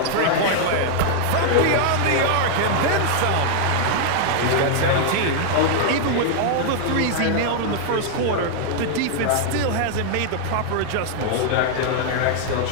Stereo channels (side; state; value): both; different; correlation -0.01